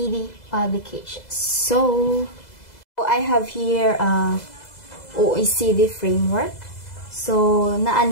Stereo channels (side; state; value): right; late; 2.0 ms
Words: publications. So I have here OECD framework. So